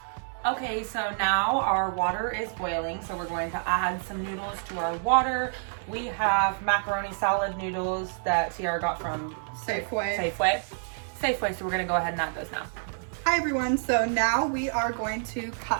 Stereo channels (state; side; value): silent; left; digital silence